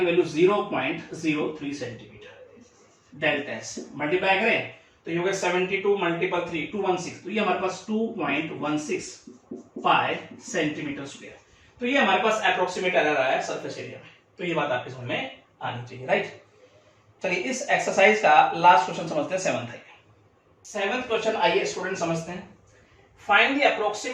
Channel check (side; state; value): both; identical; correlation 1.00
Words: value 0.03 centimetre. Delta S multiply करें तो ये हो गया 72 मल्टीपल 3 216। तो ये हमारे पास 2.16 पाई सेंटीमीटर स्क्वायर। तो ये हमारे पास अप्रोक्सीमेट एरर आया सरफेस एरिया में। तो ये बात आपके समझ में आनी चाहिए, राइट। चलिए इस एक्सरसाइज का लास्ट क्वेश्चन समझते हैं 7th है। 7th क्वेश्चन आइए स्टूडेंट समझते हैं। Find the